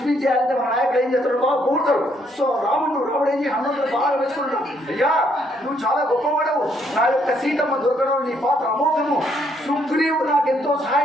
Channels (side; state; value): both; normal; correlation 0.71